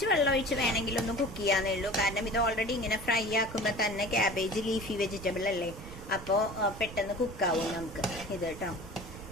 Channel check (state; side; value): noise; right; rumble, 13 dB below the sound